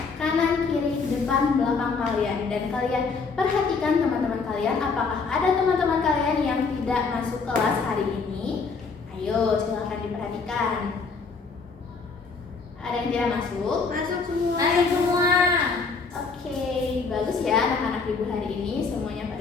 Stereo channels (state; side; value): quieter; right; 4.7 dB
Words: kanan, kiri, depan, belakang kalian. Dan kalian perhatikan teman-teman kalian, apakah ada teman-teman kalian yang tidak masuk kelas hari ini? Ayo silakan diperhatikan. Ada yang tidak masuk? Masuk semua. Masuk semua. Oke, bagus ya anak-anak Ibu hari ini semuanya